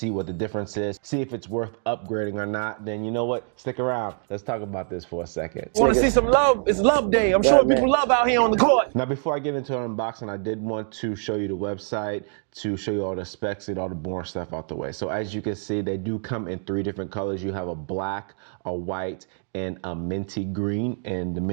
what the difference is, see if it's worth upgrading or not, then you know what? Stick around. Let's talk about this for a second. Want to see some love? It's love day. I'm Yeah, showing man. people love out here on the court. Now, before I get into an unboxing, I did want to show you the website to show you all the specs and all the boring stuff out the way. So as you can see, they do come in 3 different colors. You have a black, a white, and a minty green. And the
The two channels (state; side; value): silent; left; 59 dB below the other